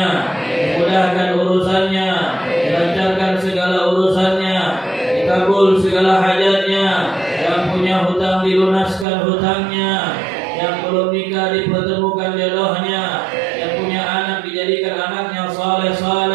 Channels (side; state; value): left; drops out; at 9.1 s